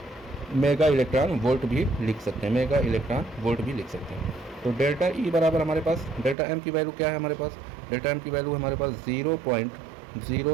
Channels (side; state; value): left; drops out; at 6.4 s